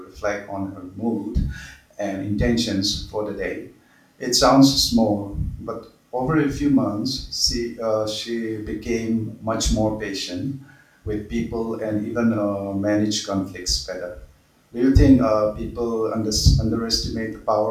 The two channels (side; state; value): both; identical; correlation 1.00